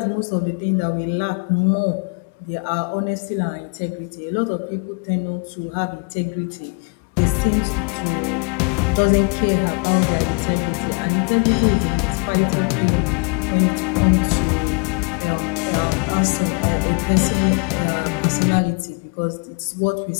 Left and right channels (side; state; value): right; quieter; 34.5 dB